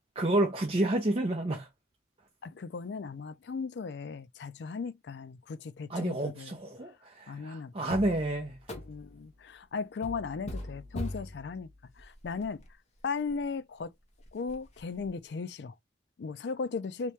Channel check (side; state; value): both; normal; correlation 0.47